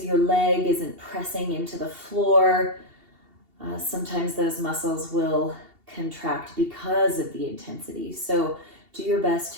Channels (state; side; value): late; left; 2.8 ms